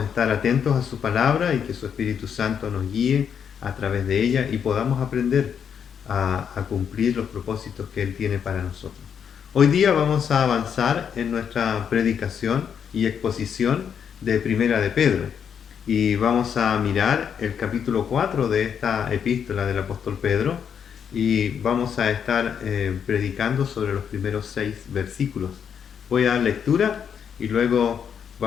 estar atentos a su palabra y que su Espíritu Santo nos guíe a través de ella y podamos aprender a cumplir los propósitos que Él tiene para nosotros. Hoy día vamos a avanzar en nuestra predicación y exposición de Primera de Pedro y vamos a mirar el capítulo 4 de esta epístola del apóstol Pedro y vamos a estar predicando sobre los primeros 6 versículos. Voy a dar lectura y luego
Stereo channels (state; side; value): quieter; right; 7.7 dB